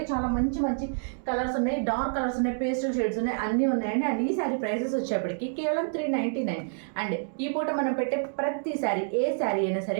చాలా మంచి మంచి కలర్స్ ఉన్నాయి, డార్క్ కలర్స్ ఉన్నాయి, పేస్టల్ షేడ్స్ ఉన్నాయి, అన్నీ ఉన్నాయండి. అండ్ ఈ శారీ ప్రైసెస్ వచ్చేప్పటికి కేవలం 399. అండ్ ఈ పూట మనం పెట్టే ప్రతి శారీ, ఏ శారీ అయినా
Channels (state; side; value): silent; left; digital silence